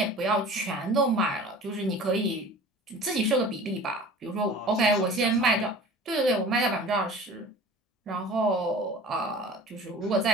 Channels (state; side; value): normal; both; correlation 0.42